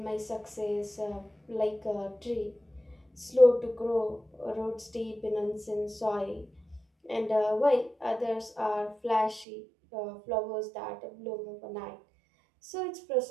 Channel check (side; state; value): left; drops out; at 9.5 s